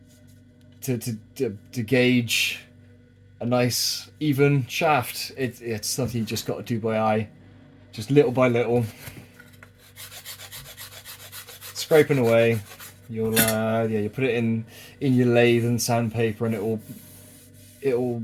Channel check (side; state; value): both; identical; correlation 1.00